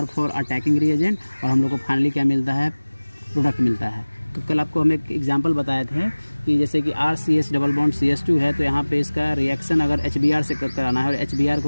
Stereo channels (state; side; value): inverted; both; correlation -1.00